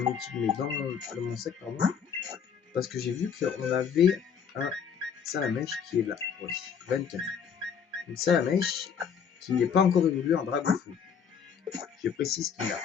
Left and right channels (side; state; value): right; quieter; 7.2 dB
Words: équipe, mais dans mon sac, pardon. Parce que j'ai vu qu'on avait un Salamèche qui est là. Oui, 24. Une Salamèche qui n'est pas encore évolué en Dragofeu. Je précise qu'il n'a